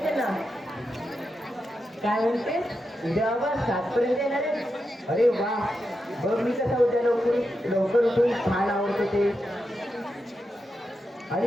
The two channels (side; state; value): both; normal; correlation 0.87